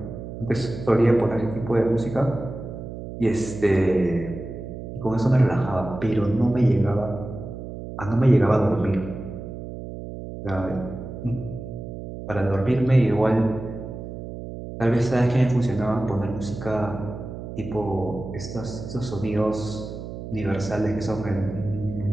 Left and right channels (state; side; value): noise; right; hum, 10 dB below the sound